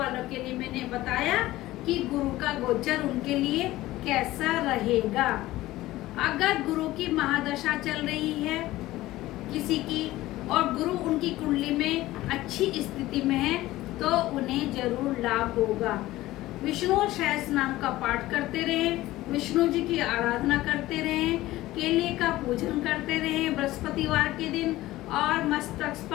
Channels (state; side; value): quieter; right; 16.8 dB